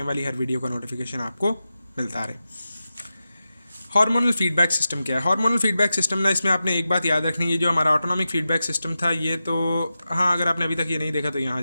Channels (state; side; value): inverted; both; correlation -0.92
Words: वाली हर वीडियो का नोटिफिकेशन आपको मिलता रहे। हार्मोनल फीडबैक सिस्टम क्या है? हार्मोनल फीडबैक सिस्टम ना, इसमें आपने एक बात याद रखनी है, जो हमारा ऑटोनॉमिक फीडबैक सिस्टम था ये तो, हाँ, अगर आपने अभी तक ये नहीं देखा तो यहाँ